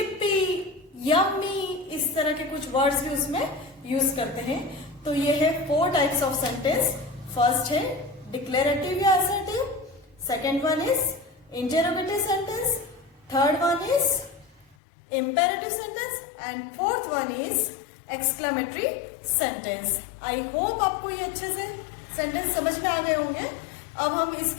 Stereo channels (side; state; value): right; drops out; at 14.8 s